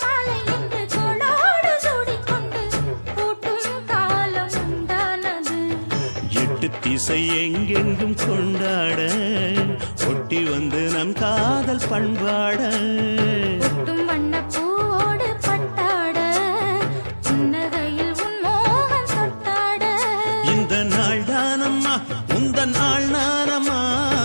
திசை எங்கெங்கும் கொண்டாட ஒட்டி வந்து நம் காதல் பண்பாட வண்ணப்பூவோடு பட்டாட புன்னகையில் உன் மோகம் தொட்டாட இந்த நாள் தானம்மா உந்த நாள் நானம்மா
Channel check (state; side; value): inverted; both; correlation -1.00